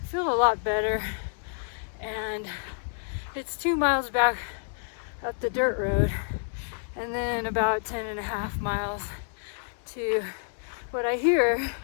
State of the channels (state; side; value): silent; right; digital silence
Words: feel a lot better. And it's 2 miles back up the dirt road, and then about 10.5 miles to what I hear